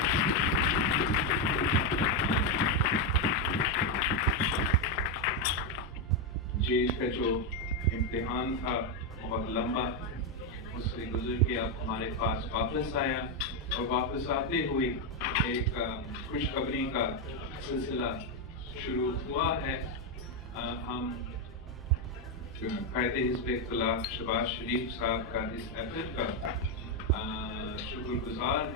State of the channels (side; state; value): both; normal; correlation 0.04